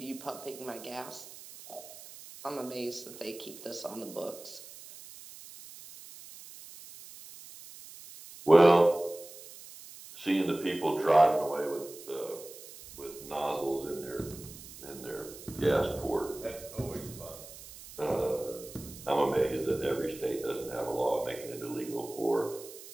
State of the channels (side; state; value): right; noise; hiss, 16 dB below the sound